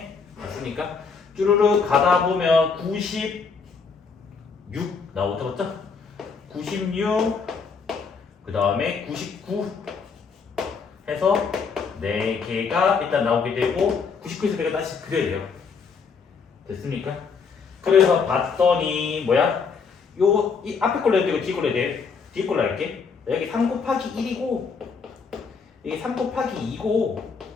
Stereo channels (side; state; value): right; quieter; 5.4 dB